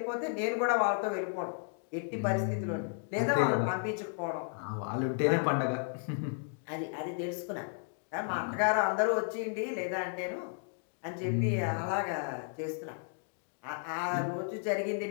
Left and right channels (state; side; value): silent; right; 55 dB below the other